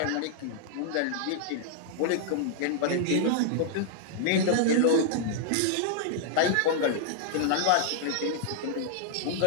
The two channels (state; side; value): different; both; correlation -0.01